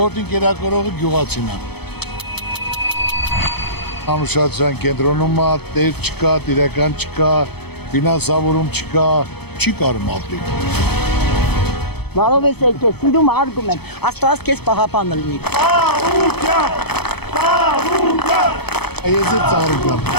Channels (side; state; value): right; late; 0.97 ms